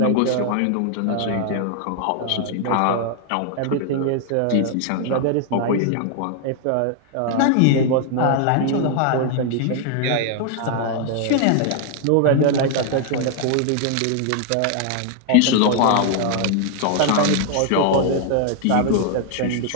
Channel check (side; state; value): both; different; correlation 0.00